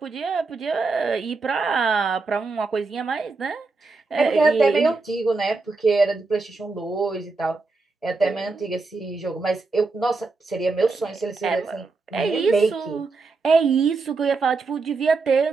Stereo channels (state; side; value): quieter; left; 4.0 dB